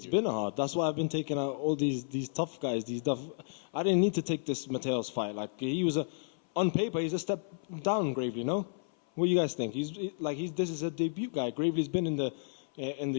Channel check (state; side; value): silent; right; 56 dB below the other